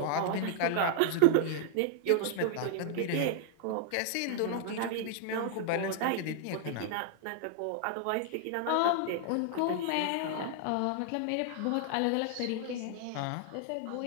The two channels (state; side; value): different; both; correlation -0.01